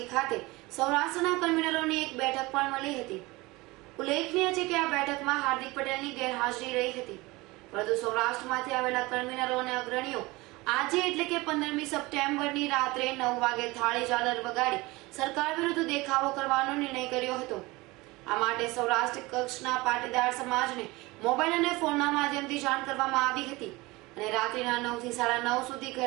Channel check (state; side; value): quieter; left; 22.0 dB